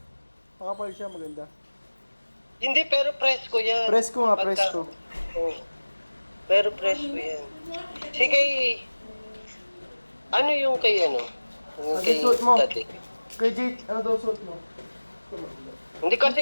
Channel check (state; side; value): inverted; both; correlation -1.00